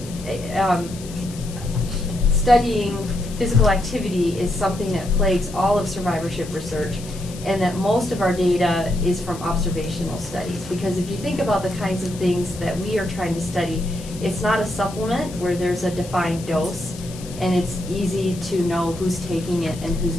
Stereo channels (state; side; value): noise; left; hiss, 16 dB below the sound